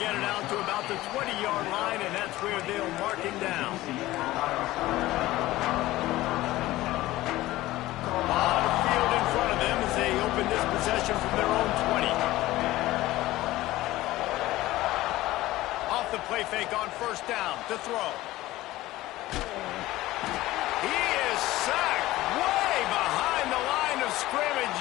get it out to about the 20-yard line, and that's where they'll mark him down. On the field in front of them as they open this possession from their own 20. Off the play fake on first down to throw. He is sacked way behind the line of scrimmage.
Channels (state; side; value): quieter; right; 17.1 dB